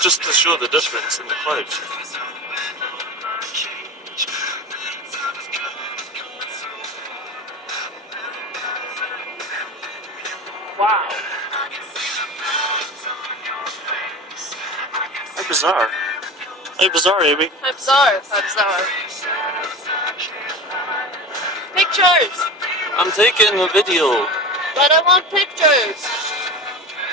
to show the difference in the clouds. Wow. How bizarre. How bizarre, Amy. How bizarre. How bizarre. Pictures! I'm taking a video. But I want pictures!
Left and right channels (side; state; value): both; normal; correlation 0.30